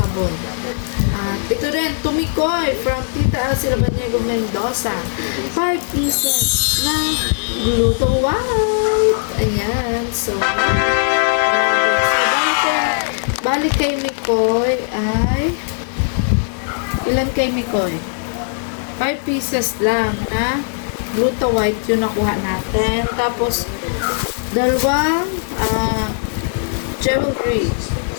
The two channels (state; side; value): silent; right; digital silence